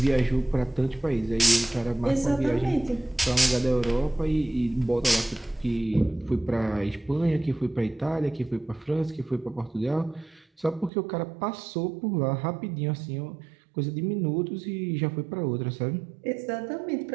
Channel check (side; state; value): left; drops out; at 10.9 s